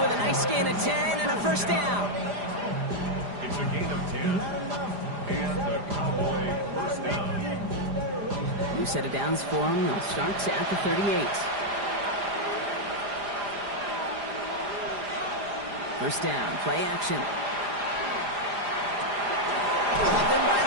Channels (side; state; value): left; late; 4.9 ms